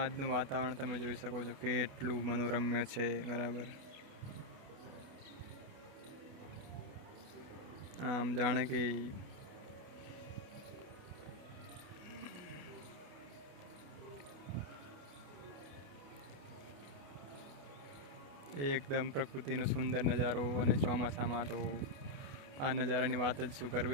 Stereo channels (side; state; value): left; late; 28 ms